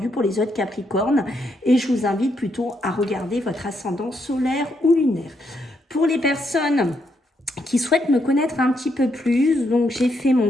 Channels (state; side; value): normal; both; correlation 0.77